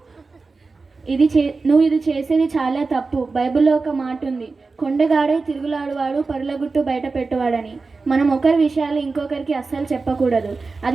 నువ్వు ఇది చేసేది చాలా తప్పు. బైబిల్లో ఒక మాట ఉంది, కొండగాడే తిరుగులాడువాడు పరులగుట్టు బయట పెట్టువాడని. మనం ఒకరి విషయాలు ఇంకొకరికి అస్సలు చెప్పకూడదు.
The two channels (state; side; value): quieter; left; 4.1 dB